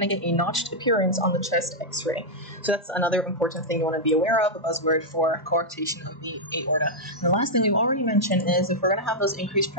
to get a notched appearance on the chest x-ray. So that's another important thing you want to be aware of, a buzzword for coarctation of the aorta. And the last thing we've already mentioned is if we're going to have those increased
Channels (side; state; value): both; normal; correlation -0.05